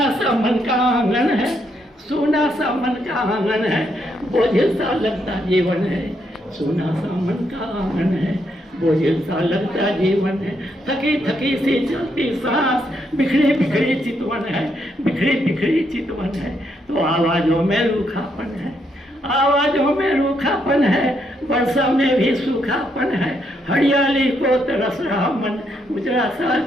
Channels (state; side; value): normal; both; correlation 0.77